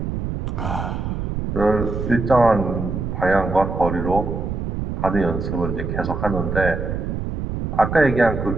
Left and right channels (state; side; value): noise; right; rumble, 4 dB below the sound